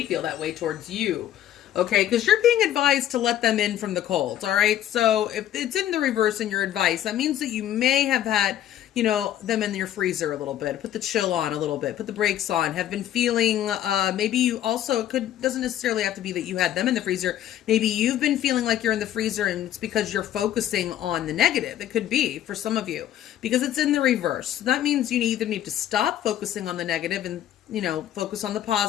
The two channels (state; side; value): quieter; right; 11.7 dB